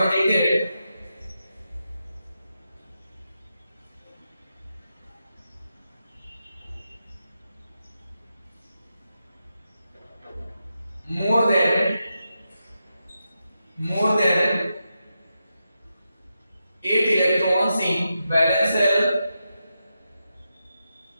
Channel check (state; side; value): inverted; both; correlation -0.87